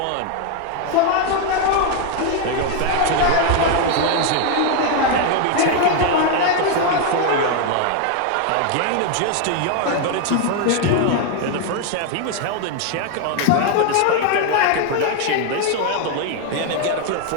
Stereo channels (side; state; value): both; different; correlation 0.01